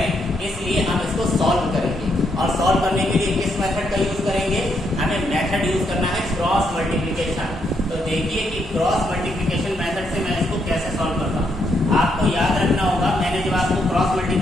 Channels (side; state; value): both; normal; correlation 0.77